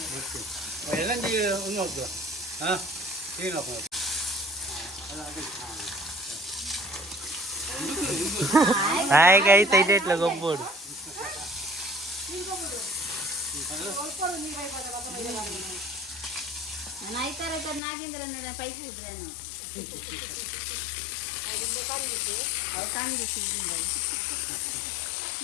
ಎಲ್ಲಂದಿ ಒಂದು ಹೋಗ್ತು ಹಾ ಏನಪ್ಪ ಹಾಯ್ ಗೈಸ್ ಐತೆ ಇಟ್ಲ ಗೊಬ್ಬೋಡು ನಾನು ಐತಾರ ನಾಗೇಂದ್ರ ನೋಡ ಪೈಪ್ ಬಿಡ್ರಿ ನಾನು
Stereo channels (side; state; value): right; drops out; at 17.8 s